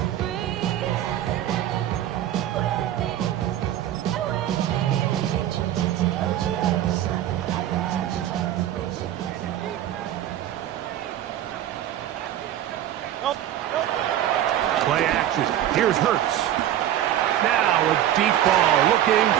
Play action. Here's Hurts. Now a deep ball looking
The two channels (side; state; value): left; quieter; 12.0 dB